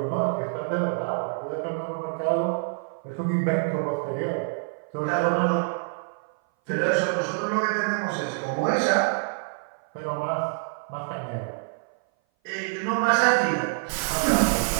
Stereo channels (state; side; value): silent; left; 58 dB below the other